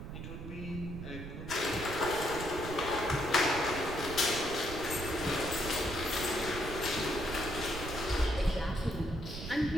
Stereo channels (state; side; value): noise; right; rumble, 8 dB below the sound